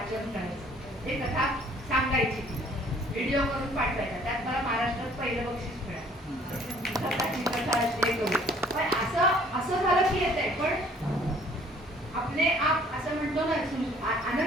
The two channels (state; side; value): normal; both; correlation 0.57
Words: करायचं, ते कथा सांगायची, व्हिडिओ करून पाठवायचा. त्यात मला महाराष्ट्रात पहिलं बक्षीस मिळालं. कथा हे करू. पण असं झालं की येतंय, पण आपले आप असं म्हणतो ना